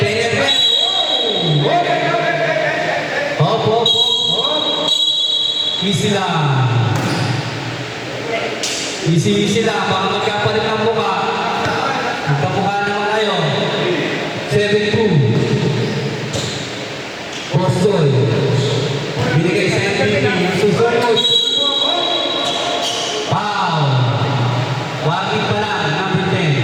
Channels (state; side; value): identical; both; correlation 1.00